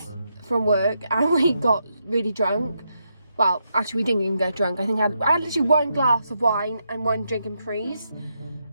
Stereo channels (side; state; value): both; inverted; correlation -0.81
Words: from work, and we got really drunk. Well, actually, we didn't even get drunk. I think I had literally 1 glass of wine and 1 drink in Prees.